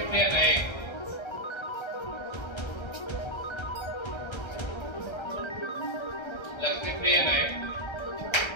Priya Naik. Lakshmi Priya Naik.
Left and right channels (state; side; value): late; right; 1.3 ms